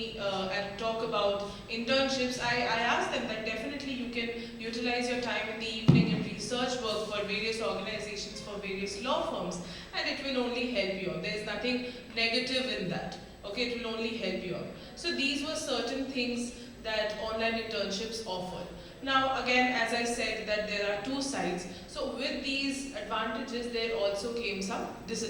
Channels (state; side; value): identical; both; correlation 1.00